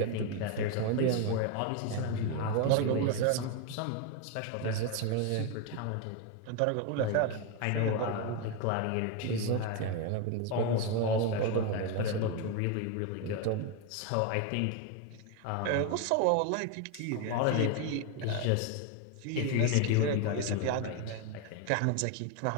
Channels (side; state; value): both; different; correlation 0.01